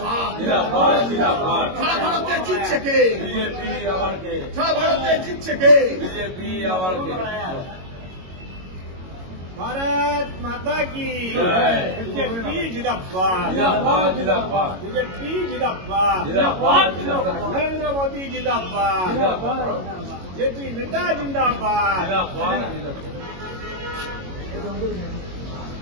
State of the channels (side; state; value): left; late; 22 ms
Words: সারা ভারতে জিতছে কে সারা ভারতে জিতছে কে भारत माता की बीजेपी जिंदाबाद बीजेपी जिंदाबाद नरेंद्र मोदी जिंदाबाद जेपी नड्डा जिंदाबाद